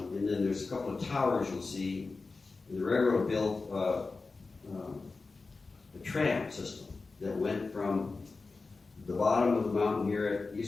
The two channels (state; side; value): quieter; right; 4.0 dB